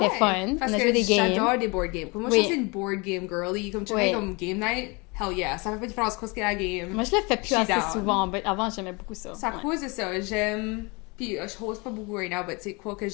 fun. Parce on a que joué des games. j'adore des board games. Comme moi, je suis une board game girly. Comme tu fais comme game night, hell yeah. Ça fait pas de différence quoi ce qu'il y a la game. Moi, je le fais plus assez souvent, mais avant, j'aimais beaucoup ça. C'est à cause de ça. J'aime... Puis, je host pas beaucoup right now, mais tu sais, quoi que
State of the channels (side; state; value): right; quieter; 28.0 dB